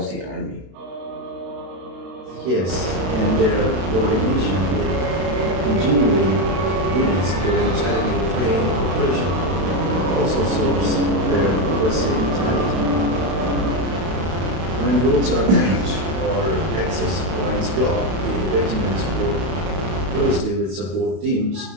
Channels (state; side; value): late; left; 32 ms